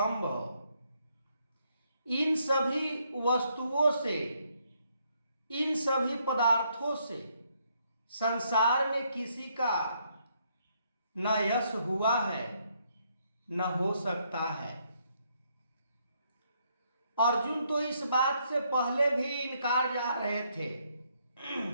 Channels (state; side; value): inverted; both; correlation -0.73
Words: इन सभी वस्तुओं से, इन सभी पदार्थों से संसार में किसी का न यश हुआ है न हो सकता है। अर्जुन तो इस बात से पहले भी इनकार जा रहे थे